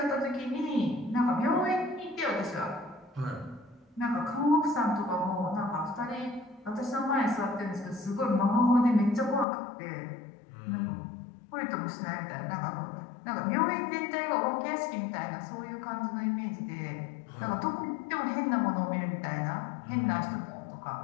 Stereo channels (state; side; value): drops out; right; at 9.5 s